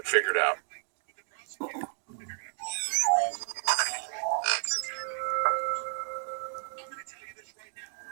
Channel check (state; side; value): silent; left; 57 dB below the other